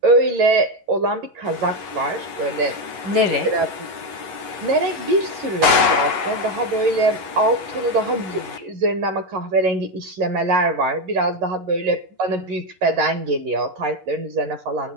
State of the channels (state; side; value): late; left; 11 ms